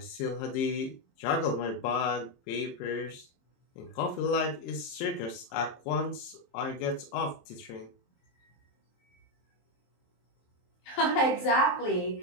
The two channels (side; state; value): right; late; 23 ms